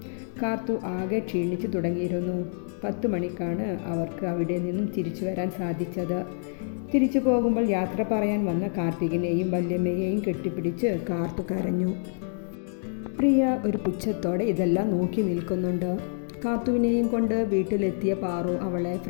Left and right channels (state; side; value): silent; right; digital silence